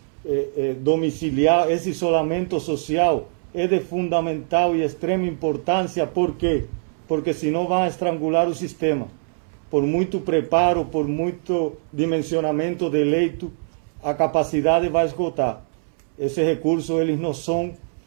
domiciliar, esse isolamento social, é de fundamental e extrema importância. Por quê? Porque senão vão estrangular o sistema. Por muito preparo, por muito dimensionamento de leito, a capacidade vai esgotar. Esses recursos, eles não são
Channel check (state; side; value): silent; left; 64 dB below the other